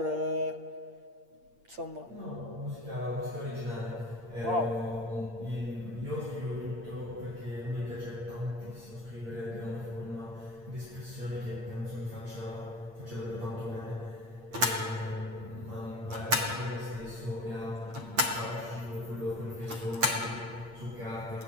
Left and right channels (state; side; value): late; left; 8.6 ms